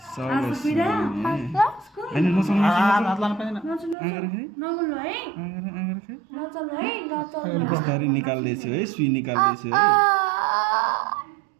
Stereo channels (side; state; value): left; drops out; at 4.0 s